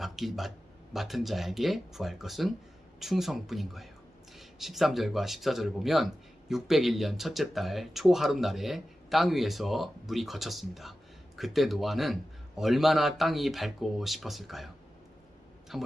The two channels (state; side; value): normal; both; correlation 0.94